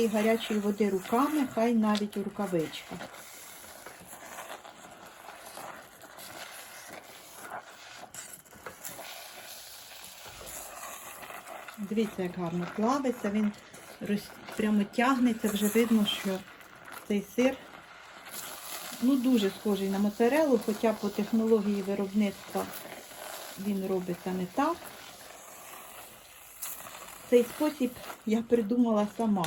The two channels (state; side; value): identical; both; correlation 1.00